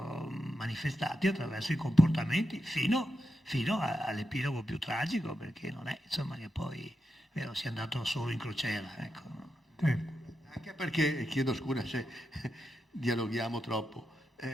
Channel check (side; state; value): both; normal; correlation 0.87